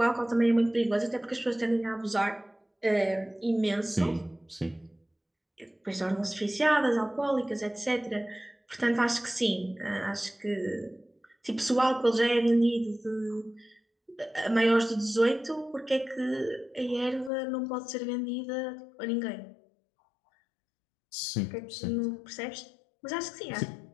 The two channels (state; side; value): drops out; right; at 17.3 s